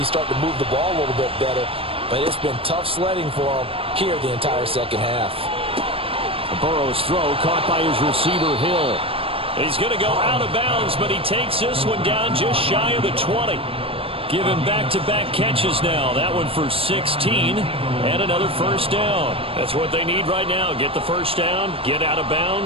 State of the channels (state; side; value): late; left; 0.27 ms